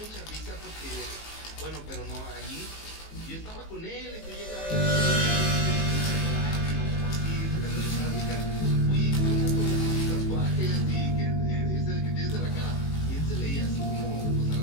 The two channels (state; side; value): late; right; 19 ms